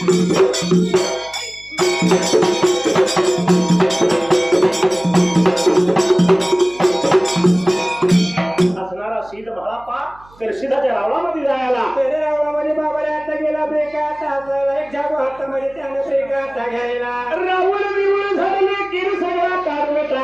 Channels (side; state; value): right; noise; hum, 27 dB below the sound